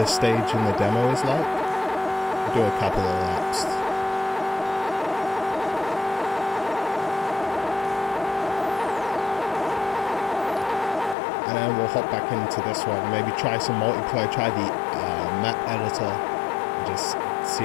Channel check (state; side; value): drops out; right; at 11.2 s